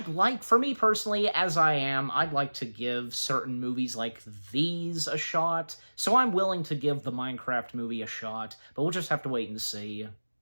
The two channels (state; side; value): inverted; both; correlation -1.00